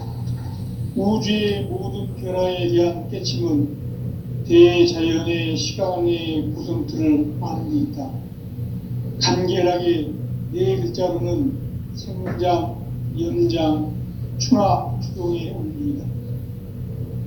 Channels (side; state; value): both; identical; correlation 1.00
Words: 우주의 모든 변화에 대한 깨침은 대자연의 시간의 구성틀을 아는 데 있다. 간결하게 네 글자로는 생장, 연장, 추나 추동의 원리이다.